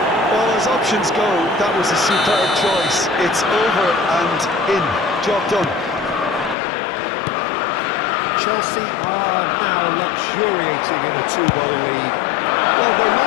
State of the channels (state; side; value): drops out; right; at 6.6 s